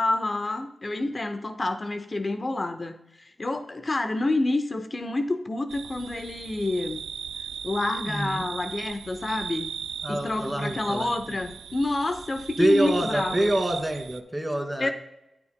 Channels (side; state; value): both; normal; correlation 0.95